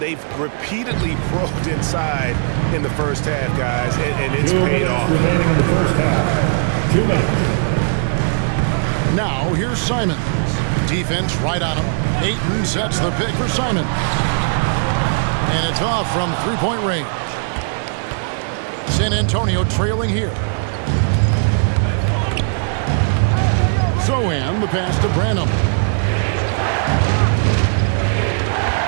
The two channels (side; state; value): left; silent; digital silence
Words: repeatedly probed inside in the first half, guys, and it's paid off. Remaining in the first half. 2 minutes. Now here's Simons. Defense right on him. Ayton sets the pick for Simons. And it's off from three-point range. San Antonio trailing here. Zohan, the pass to Branham.